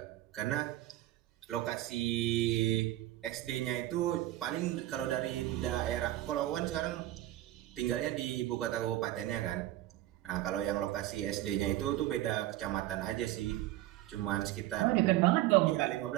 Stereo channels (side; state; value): left; quieter; 15.2 dB